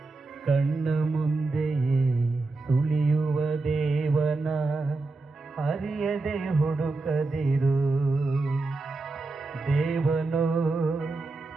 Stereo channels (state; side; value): quieter; left; 3.5 dB